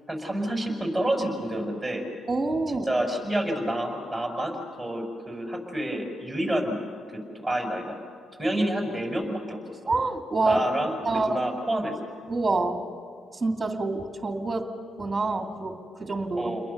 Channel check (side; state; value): both; normal; correlation 0.91